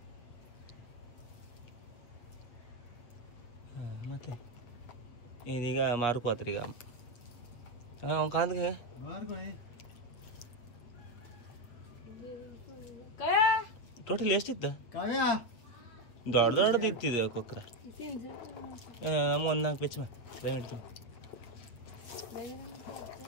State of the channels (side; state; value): right; late; 8.1 ms